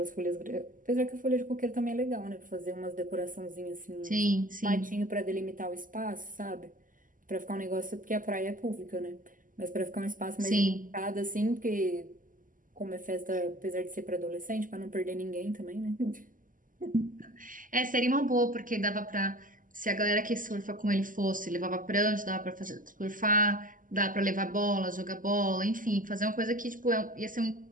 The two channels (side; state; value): left; late; 0.39 ms